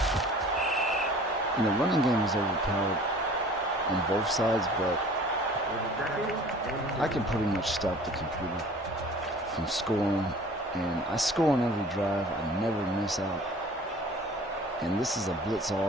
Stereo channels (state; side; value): normal; both; correlation 0.47